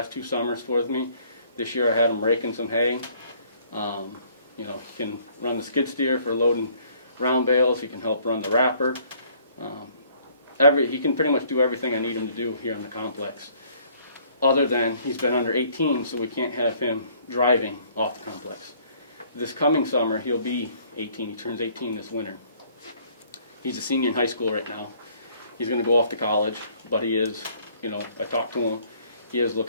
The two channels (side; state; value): both; inverted; correlation -0.60